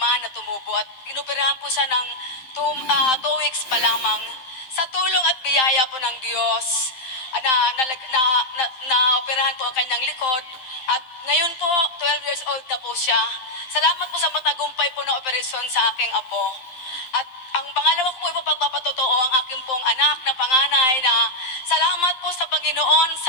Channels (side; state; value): right; late; 12 ms